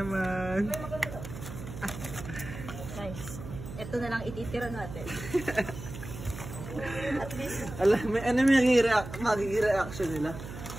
Guys, ito na lang ititira natin. At least, Alam, ano may magiging reaction nila?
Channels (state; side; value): noise; right; hum, 11 dB below the sound